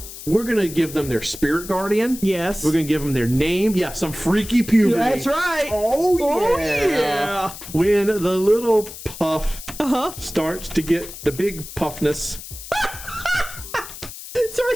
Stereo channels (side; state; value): left; noise; hiss, 13 dB below the sound